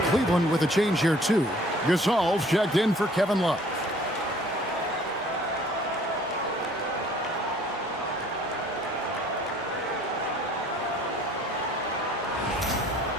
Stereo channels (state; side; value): normal; both; correlation 0.55